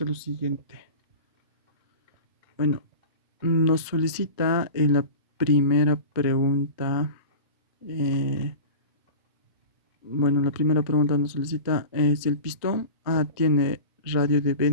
lo siguiente. Bueno, nos solicita en la primera pregunta. La primera pregunta nos solicita si el pistón A tiene radio de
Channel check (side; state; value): both; inverted; correlation -0.33